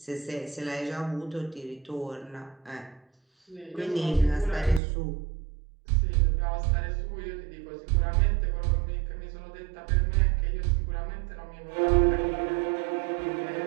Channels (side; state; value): left; drops out; at 4.8 s